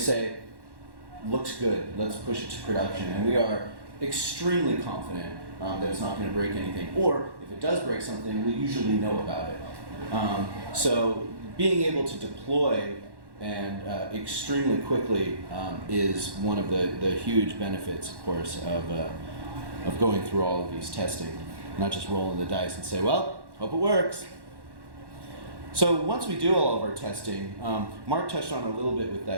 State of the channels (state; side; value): late; left; 1.1 ms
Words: looks good, let's push it to production. And we are extremely confident that it's not going to break anything. Or if it does break something, we usually know about it. So being able to deploy and extremely quickly is one of the huge benefits, of course, of going through all of these testing, not just rolling the dice and say, well, hope it works. So once we do all of our testing, Mark touched on a little bit with